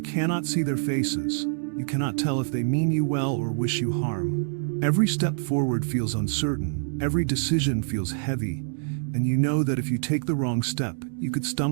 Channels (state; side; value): silent; left; digital silence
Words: cannot see their faces. You cannot tell if they mean you well or wish you harm. Every step forward feels uncertain, every decision feels heavy, and you know that if you take the wrong step, you could